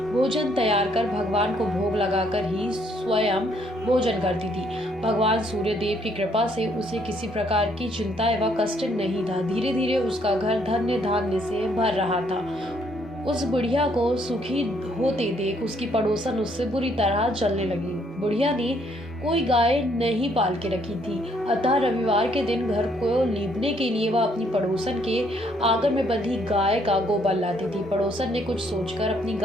भोजन तैयार कर भगवान को भोग लगाकर ही स्वयं भोजन करती थी। भगवान सूर्य देव की कृपा से उसे किसी प्रकार की चिंता एवं कष्ट नहीं था। धीरे धीरे उसका घर धन्य धान्य से भर रहा था। उस बुढ़िया को सुखी होते देख उसकी पड़ोसन उससे बुरी तरह जलने लगी। बुढ़िया ने कोई गाय नहीं पाल के रखी थी, अतः रविवार के दिन घर को लीपने के लिए वह अपनी पड़ोसन के आंगन में बंधी गाय का गोबर लाती थी। पड़ोसन ने कुछ सोचकर अपनी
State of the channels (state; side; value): normal; both; correlation 0.68